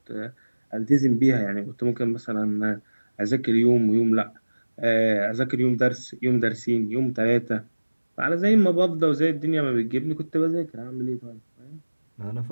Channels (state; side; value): inverted; both; correlation -1.00